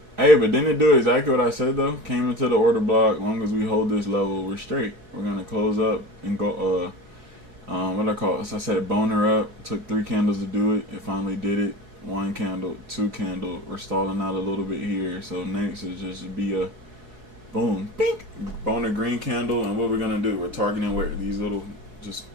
Hey, but didn't it do exactly what I said though? Came into the order block. As long as we hold this level, we're straight. We're gonna close up and go. What I call it? So I said boner up. Took 3 candles to do it. It finally did it. 1 candle, 2 candle. We're stalling out a little bit here. So next is just be a boom, pink, boner green candle. And what we're gonna do? We're targeting where these little just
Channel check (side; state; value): left; late; 4.7 ms